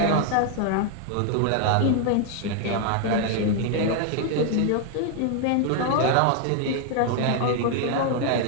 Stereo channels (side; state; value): both; different; correlation 0.00